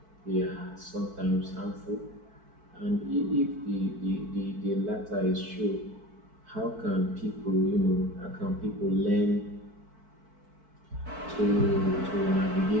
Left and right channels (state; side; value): late; left; 4.5 ms